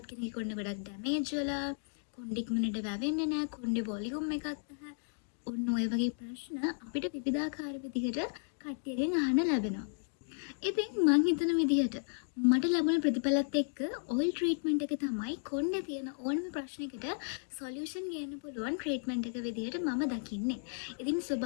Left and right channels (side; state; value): right; silent; digital silence